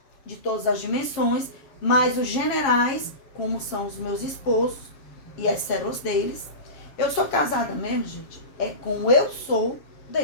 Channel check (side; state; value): right; late; 7.3 ms